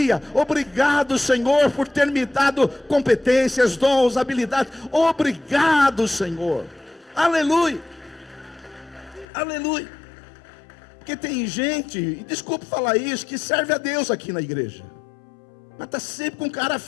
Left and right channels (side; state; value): right; drops out; at 9.2 s